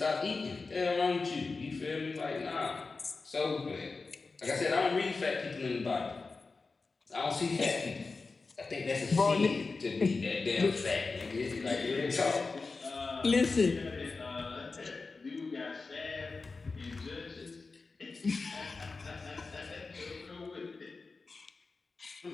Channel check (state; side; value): quieter; right; 4.1 dB